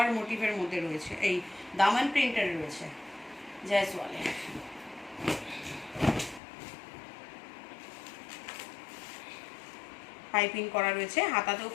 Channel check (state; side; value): drops out; right; at 6.4 s